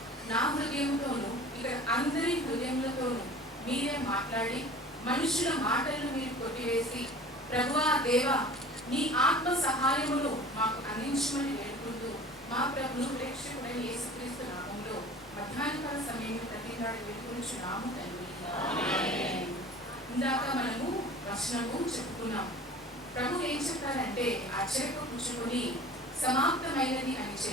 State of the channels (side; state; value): both; normal; correlation 0.42